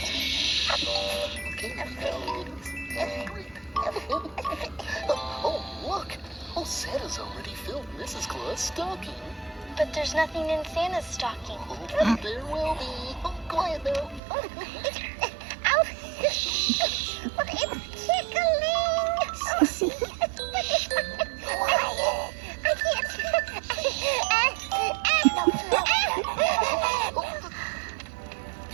Okay, oh, look! Oh, Santa's already filled Mrs. Claus' stocking. But there's nothing in Santa's stocking. Oh, there will be. Oh, quiet now. Ow. But it's tickling. Quiet. I can't.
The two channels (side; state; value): left; drops out; at 14.2 s